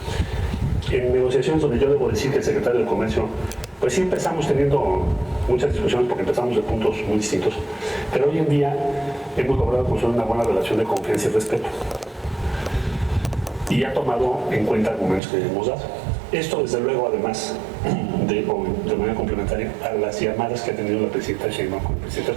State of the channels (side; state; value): left; drops out; at 15.2 s